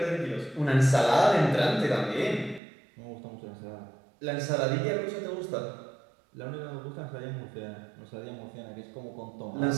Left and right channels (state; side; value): drops out; left; at 2.6 s